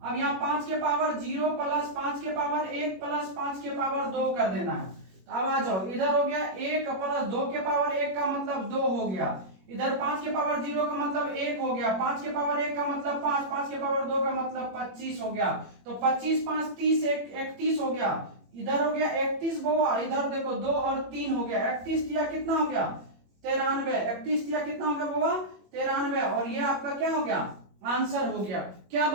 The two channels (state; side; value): late; left; 21 ms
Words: यहाँ 5 के पावर 0 प्लस 5 के पावर 1 प्लस 5 के पावर 2 कर देना है। तो अब आ जाओ, इधर हो गया 1 प्लस 2 के पावर 1 का मतलब 2 हो गया, इधर 5 के पावर 0 का मतलब 1 हो गया, 5 के पावर 1 का मतलब 5, 5 के पावर 2 का मतलब 25 हो गया। तो 25 5 30 31 हो गया, इधर हो गया 31 बउआ, इधर देखो 2 और 3 हो गया, 31 दिया कितना हो गया? 93। 31 दिया कितना हो गया बउआ? 93। और ये आपका क्या हो गया? आंसर हो गया। क्या